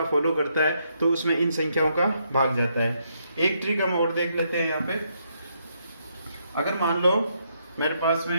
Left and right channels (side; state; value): both; inverted; correlation -0.75